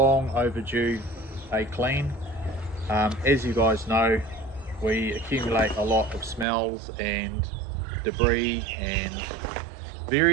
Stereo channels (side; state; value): left; drops out; at 6.5 s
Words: overdue a clean. As you guys know, we accumulate a lot of smells and debris and